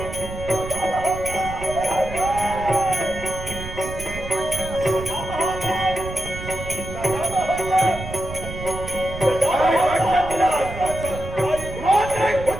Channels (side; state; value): right; noise; rumble, 10 dB below the sound